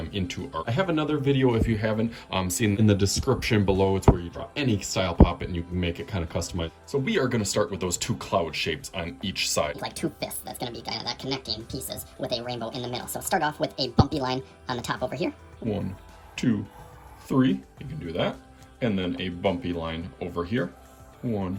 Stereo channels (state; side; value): identical; both; correlation 1.00